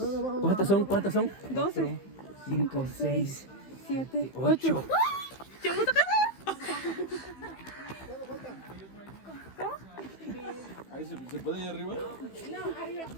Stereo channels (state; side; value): late; right; 15 ms